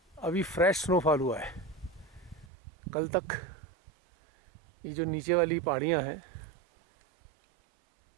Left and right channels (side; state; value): left; drops out; at 2.5 s